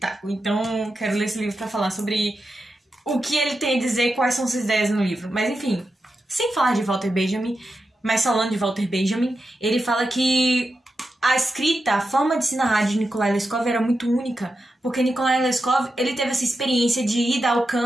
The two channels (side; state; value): both; normal; correlation 0.89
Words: Então, quero ler esse livro para falar sobre o que ele tem a dizer, quais são suas ideias no livro. Mas, enfim... Sem falar de Walter Benjamin, mas falando de Walter Benjamin, ele fala que a escrita, a forma de se narrar de Nikolai Leskov era muito única, porque Nikolai Leskov, ele teve essa experiência de ida ao